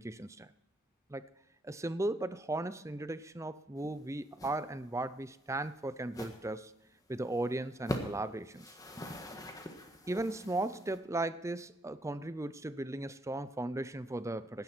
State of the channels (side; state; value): both; normal; correlation 0.74